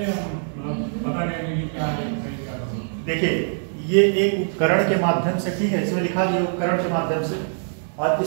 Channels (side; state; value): left; silent; digital silence